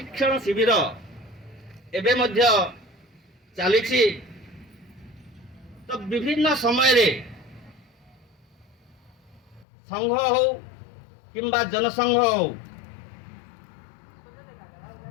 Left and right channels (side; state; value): right; drops out; at 9.7 s